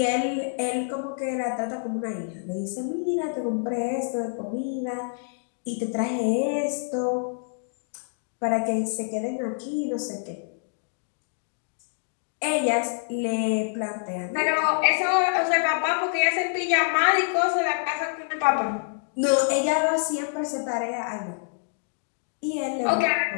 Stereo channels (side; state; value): right; silent; digital silence